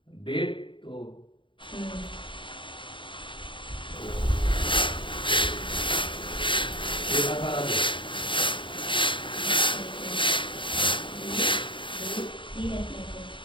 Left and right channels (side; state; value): right; late; 0.24 ms